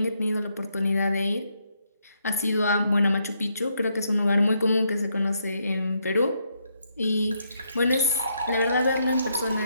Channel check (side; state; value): both; inverted; correlation -0.76